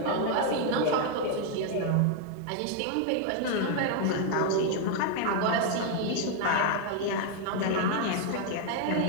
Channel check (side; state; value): both; different; correlation 0.00